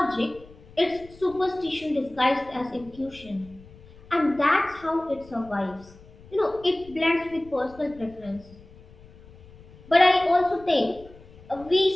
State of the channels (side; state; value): left; noise; rumble, 22 dB below the sound